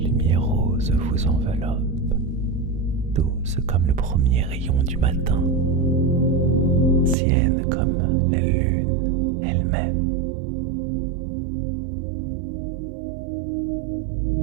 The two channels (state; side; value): drops out; left; at 7.2 s